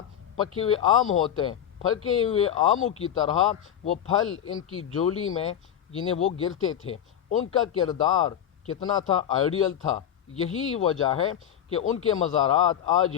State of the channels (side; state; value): right; quieter; 9.8 dB